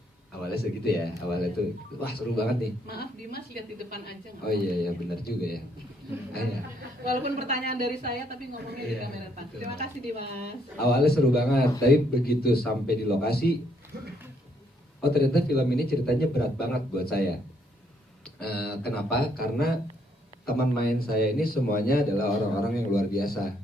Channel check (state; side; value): normal; both; correlation 0.71